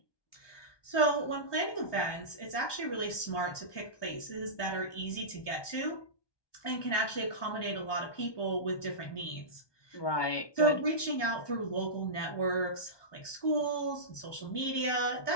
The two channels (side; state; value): right; late; 1.2 ms